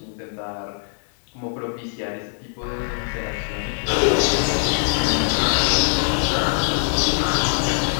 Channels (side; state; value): right; silent; digital silence